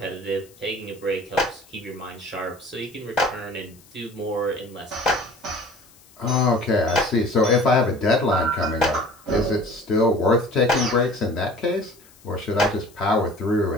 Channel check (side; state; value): left; noise; hiss, 27 dB below the sound